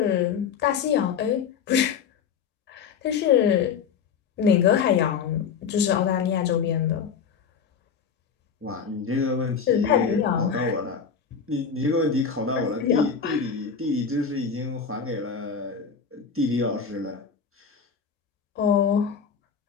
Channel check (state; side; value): quieter; right; 6.6 dB